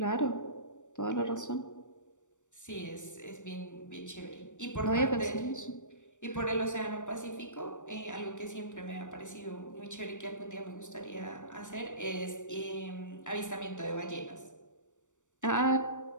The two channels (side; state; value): right; late; 0.85 ms